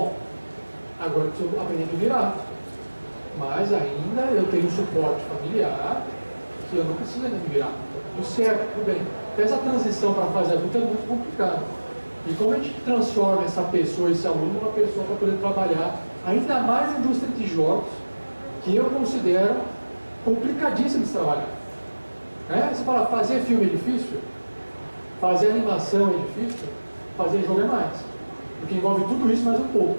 agora eu preciso aprender a me virar. Mas ainda eu tenho um suporte familiar que eu não preciso ainda me virar. Tudo certo, tudo bem. Então essa transição para a fase adulta é muito complicada. E como a gente transforma essa pessoa, esse aluno, numa pessoa para poder trabalhar, ainda mais na indústria de jogos, que eu considero complicadíssimo de trabalhar. Você fala, fazer filme é difícil? Fazer animação é difícil? Fazer jogo é mais. Porque envolve tudo isso mais um pouco.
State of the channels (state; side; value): inverted; both; correlation -1.00